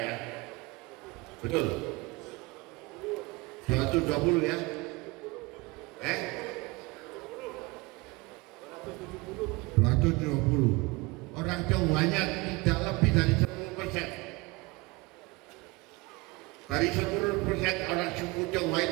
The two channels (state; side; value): quieter; left; 24.5 dB